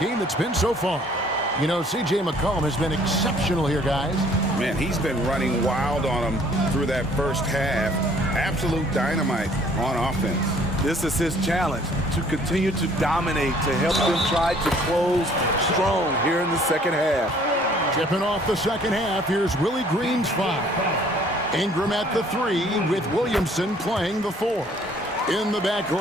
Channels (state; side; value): normal; both; correlation 0.58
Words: it's been so far. You know, C.J. McCollum has been exceptional here, guys. Man, he's been running wild on them through that first half. Absolute dynamite on offense. This is his challenge, to continue to dominate, to help them try to close strong here in the second half. Tipping off the second half, here's Willie Green's 5. Ingram at the 3 with Williamson playing the 4. In the